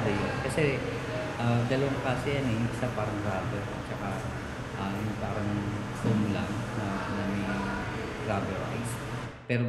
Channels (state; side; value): identical; both; correlation 1.00